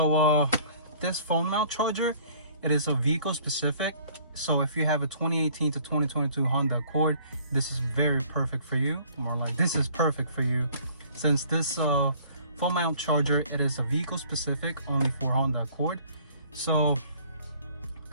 this phone mount charger, it is a vehicle specific. So if you have a 2018 to 2022 Honda Accord, this is very perfect for you. More like, this is perfect for you, since this phone mount charger, it is a vehicle specific, only for Honda Accord. So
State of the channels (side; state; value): both; inverted; correlation -0.55